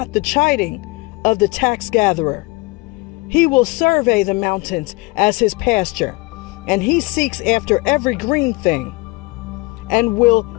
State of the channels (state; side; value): quieter; right; 24.3 dB